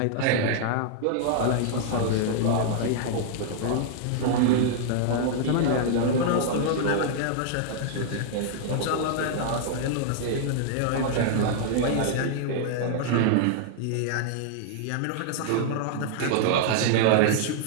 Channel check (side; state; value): both; different; correlation -0.01